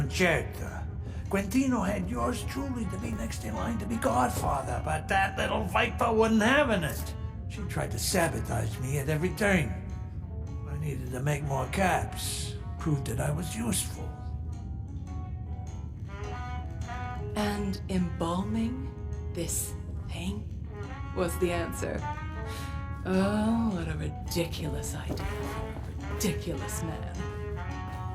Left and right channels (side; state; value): both; identical; correlation 1.00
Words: Quintino had yours truly to be next in line to be godfather, but that little viper wasn't having it. She tried to sabotage me at every turn. I needed to make more caps, prove that I was useful. And embalming this thing was the answer. Oh, what a ridiculous idea for a ridiculous man.